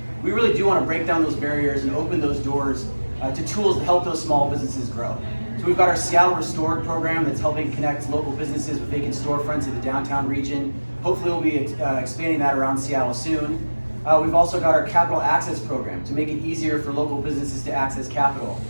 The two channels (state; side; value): inverted; both; correlation -1.00